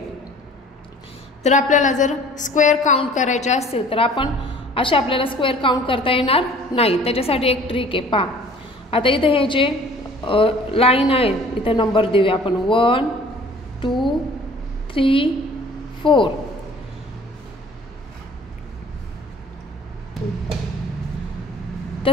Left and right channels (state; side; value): normal; both; correlation 0.50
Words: तर आपल्याला जर स्क्वेअर काउंट करायचे असतील तर आपण असे आपल्याला स्क्वेअर काउंट करता येणार नाही. त्याच्यासाठी एक ट्रिक आहे. पहा आता इथे हे जे लाईन आहे इथे नंबर देऊया आपण 1 2 3 4.